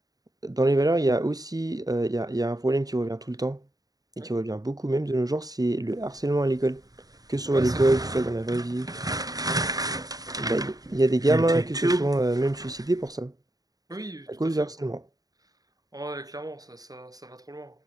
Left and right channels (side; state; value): left; late; 0.18 ms